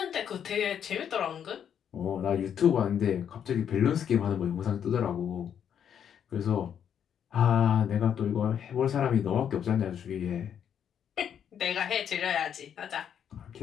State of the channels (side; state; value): right; quieter; 8.7 dB